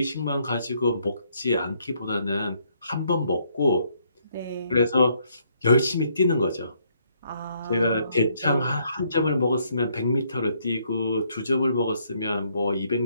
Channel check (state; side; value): inverted; both; correlation -0.70